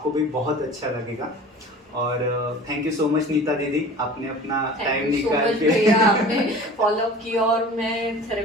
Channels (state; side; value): normal; both; correlation 0.41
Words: भी बहुत अच्छा लगेगा। और thank you so much Neeta दीदी, आपने अपना टाइम थैंक यू सो निकाल मच के भैया, आपने फॉलो अप किया और मैं